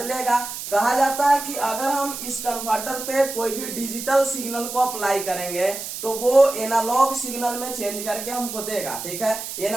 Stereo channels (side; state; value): right; noise; hiss, 8 dB below the sound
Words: कहा जाता है कि अगर हम इस कन्वर्टर पे कोई भी डिजिटल सिग्नल को अप्लाई करेंगे तो वो एनालॉग सिग्नल में चेंज करके हमको देगा। ठीक है,